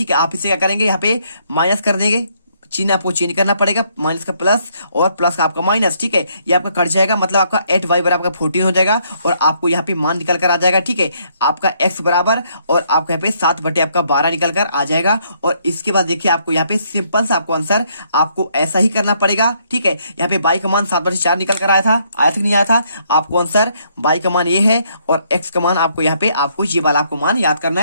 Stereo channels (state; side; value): inverted; both; correlation -0.70